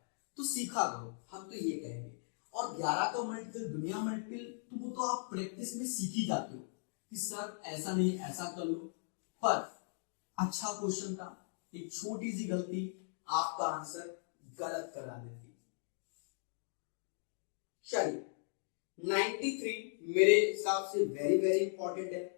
तो सीखा करो, हम तो ये कहेंगे। और 11 का मल्टीपल दुनिया मल्टीपल तो वो तो आप प्रैक्टिस में सीख ही जाते हो कि सर ऐसा नहीं ऐसा कर लो, पर अच्छा क्वेश्चन था, एक छोटी सी गलती आपका आंसर गलत करा देती। चलिए 93 मेरे हिसाब से वेरी वेरी इंपॉर्टेंट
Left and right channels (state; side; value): silent; right; digital silence